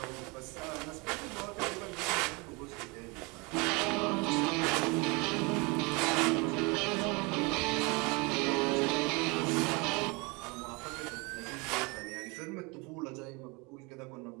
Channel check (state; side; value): quieter; left; 27.9 dB